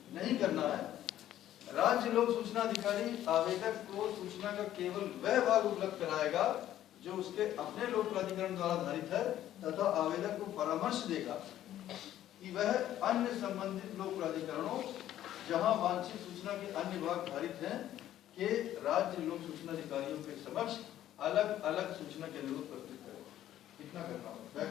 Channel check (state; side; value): quieter; right; 12.4 dB